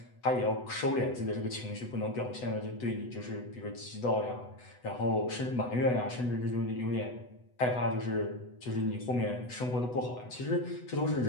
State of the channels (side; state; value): right; late; 8.0 ms